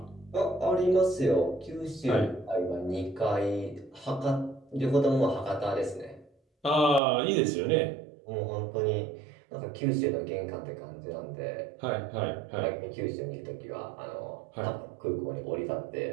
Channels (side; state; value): left; drops out; at 7.0 s